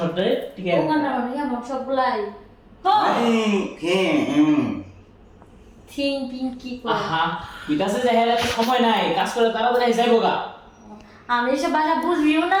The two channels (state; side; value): identical; both; correlation 1.00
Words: ঠিক আছে? ওখানে মানে আমার সবগুলাই থিং পিং কি করে আহা, বিকাশে যাই হেলে সময় নাই, কাজ করে তাড়াতাড়ি যাইবো গা। আমি এসব ভাষা বুঝবিও না